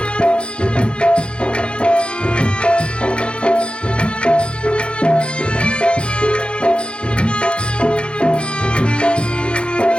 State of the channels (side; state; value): right; late; 0.056 ms